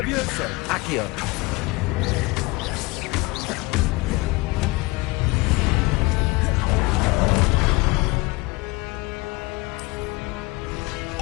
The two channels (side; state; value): right; quieter; 23.9 dB